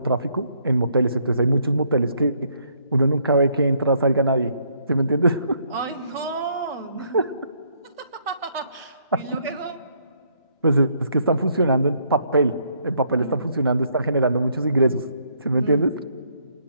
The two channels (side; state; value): both; inverted; correlation -0.69